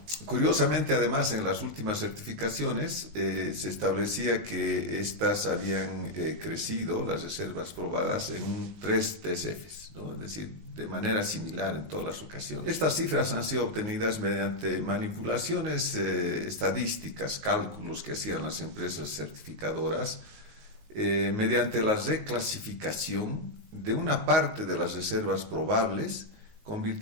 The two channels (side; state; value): left; late; 19 ms